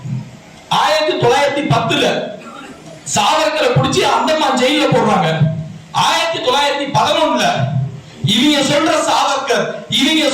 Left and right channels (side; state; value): both; identical; correlation 1.00